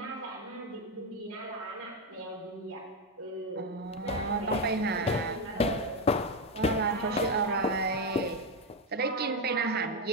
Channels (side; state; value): both; normal; correlation 0.08